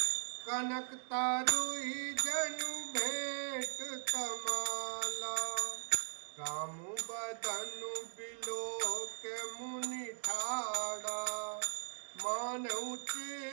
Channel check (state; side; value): silent; left; digital silence